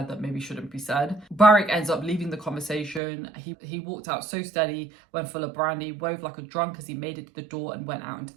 that maybe shouldn't be said. Burrich ends up leaving the conversation. He walked out so steady when full of brandy, wove like a drunk as he made it to the door and went out into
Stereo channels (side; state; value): left; drops out; at 3.0 s